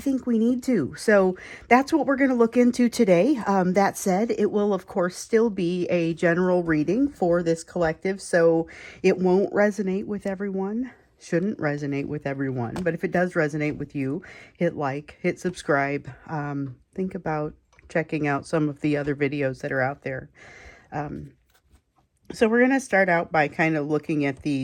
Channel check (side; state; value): both; identical; correlation 1.00